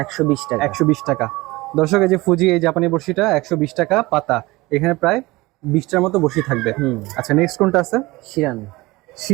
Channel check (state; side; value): quieter; left; 21.1 dB